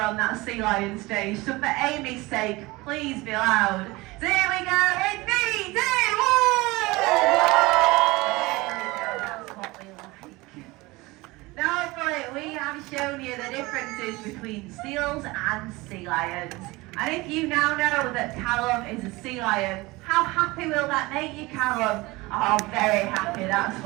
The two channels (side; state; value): left; quieter; 21.9 dB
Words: that sea lion stage, so for Amy's sake, please be loud. So here we go, in 3, 2, 1! That's what we like. Now hopefully we have shown you the differences between seals and sea lions. And if you now know that Callum is a sea lion, how happy will that make you, Callum? Oh, very happy, that's